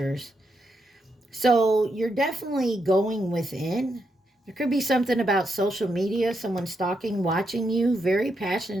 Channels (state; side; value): normal; both; correlation 0.82